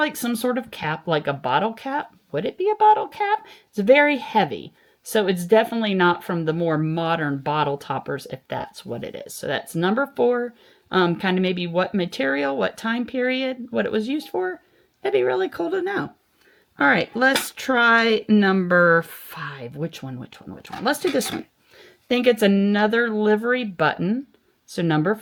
some sort of cap, like a bottle cap. Would it be a bottle cap? It's very heavy. So it's definitely not from the more modern bottle toppers, if that's what it is. So that's number 4. Kind of maybe what material, what time period, what it was used for. That'd be really cool to know. All right, let's try number 5. Which one? Let's do this one. I think it's another livery button. So number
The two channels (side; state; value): both; identical; correlation 1.00